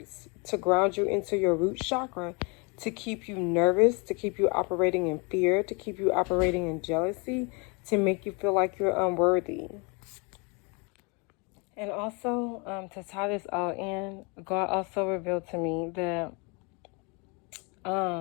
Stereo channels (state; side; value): quieter; right; 31.5 dB